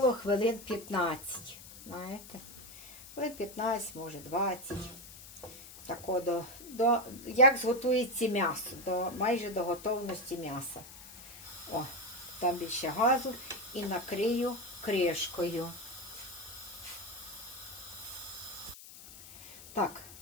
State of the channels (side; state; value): left; noise; hiss, 16 dB below the sound